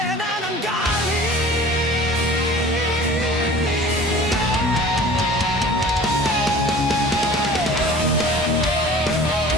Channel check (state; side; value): normal; both; correlation 0.44